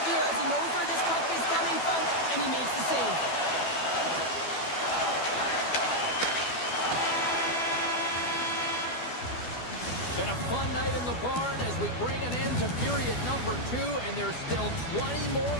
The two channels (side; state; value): right; late; 12 ms